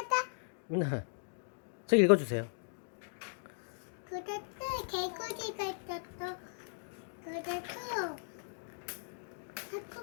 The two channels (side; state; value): right; silent; digital silence